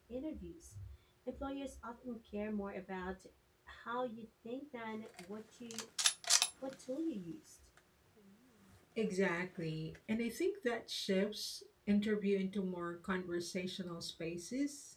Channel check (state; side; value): identical; both; correlation 1.00